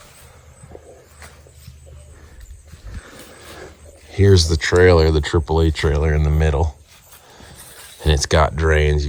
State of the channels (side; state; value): both; identical; correlation 1.00